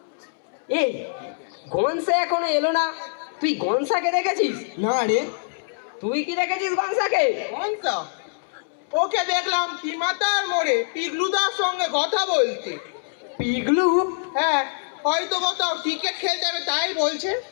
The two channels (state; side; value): silent; right; 62 dB below the other